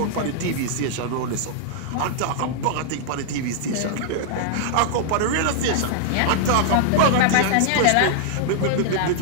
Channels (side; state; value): both; different; correlation -0.01